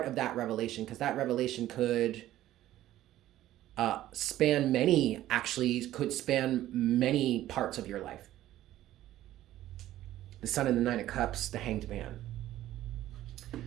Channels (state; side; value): quieter; left; 13.9 dB